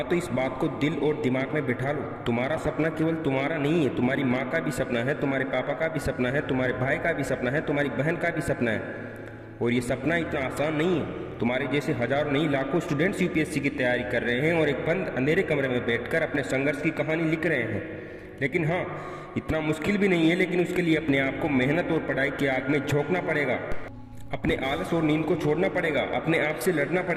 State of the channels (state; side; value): identical; both; correlation 1.00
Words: तो इस बात को दिल और दिमाग में बिठा लो, तुम्हारा सपना केवल तुम्हारा नहीं है, तुम्हारी माँ का भी सपना है, तुम्हारे पापा का भी सपना है, तुम्हारे भाई का भी सपना है, तुम्हारी बहन का भी सपना है। और ये सपना इतना आसान नहीं है। तुम्हारे जैसे हजारों नहीं लाखों स्टूडेंट्स यूपीएससी की तैयारी कर रहे हैं और एक बंद अंधेरे कमरे में बैठकर अपने संघर्ष की कहानी लिख रहे हैं। लेकिन हाँ, इतना मुश्किल भी नहीं है, लेकिन उसके लिए अपने आप को मेहनत और पढ़ाई की आग में झोंकना पड़ेगा। अपने आलस और नींद को छोड़ना पड़ेगा, अपने आप से लड़ना